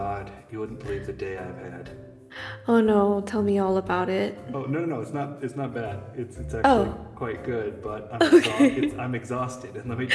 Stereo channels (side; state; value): both; identical; correlation 1.00